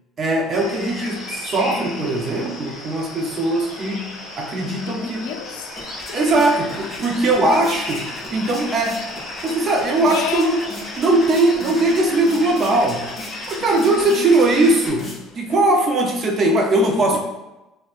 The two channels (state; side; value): normal; both; correlation 0.52